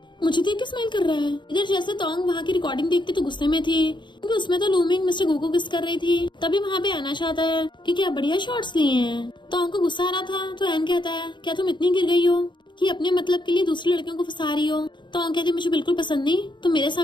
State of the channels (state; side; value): late; right; 0.23 ms